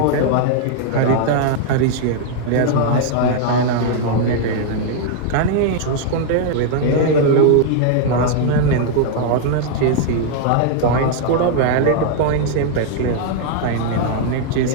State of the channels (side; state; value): both; different; correlation -0.01